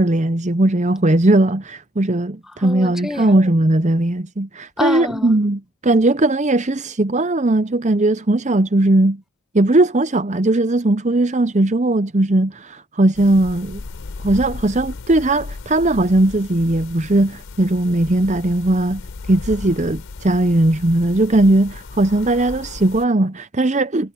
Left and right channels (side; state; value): both; normal; correlation 0.69